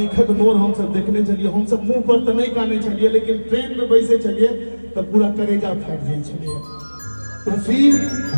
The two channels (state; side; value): inverted; both; correlation -1.00